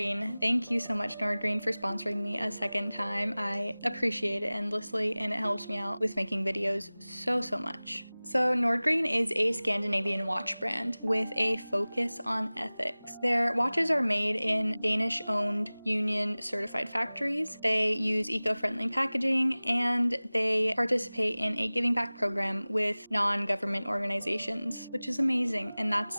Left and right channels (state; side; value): inverted; both; correlation -0.99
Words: Thank you so much, Nordgreen, for sponsoring me a second time. I appreciate it endlessly, and it helps me out with making videos so much. So Nordgreen is a Scandinavian watch brand with a focus on ethics. Their watches are made in Danish-owned union certified factories. They use eco-friendly packaging, and they participate in a giving back program with non-government organizations, which is amazing, and